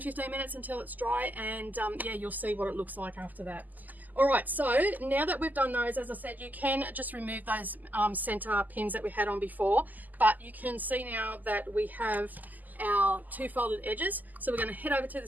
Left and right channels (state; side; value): late; left; 0.083 ms